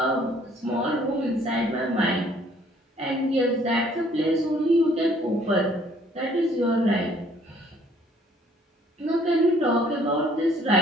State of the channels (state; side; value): normal; both; correlation 0.60